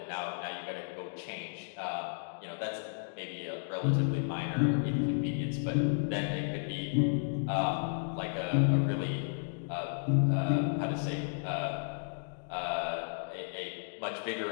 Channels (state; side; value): silent; right; digital silence